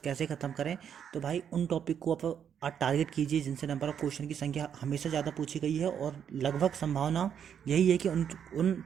कैसे ख़त्म करें, तो भाई उन टॉपिक को आप टारगेट कीजिए जिनसे नंबर ऑफ क्वेश्चन की संख्या हमेशा ज़्यादा पूछी गई है और लगभग संभावना यही है कि उन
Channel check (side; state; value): left; quieter; 8.3 dB